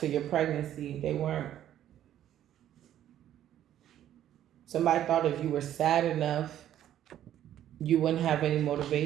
your pregnancy, they weren't. Somebody thought if you were sad enough, you wouldn't have any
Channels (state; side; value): quieter; left; 11.5 dB